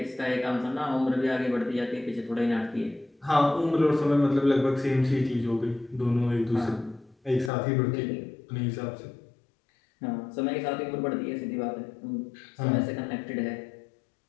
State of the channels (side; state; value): right; drops out; at 7.5 s